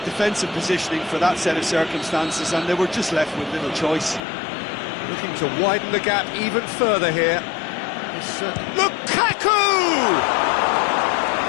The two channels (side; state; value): right; drops out; at 4.2 s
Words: defensive positioning for that set of circumstances, and they were just left with little choice. Looking to widen the gap even further here. Lukaku!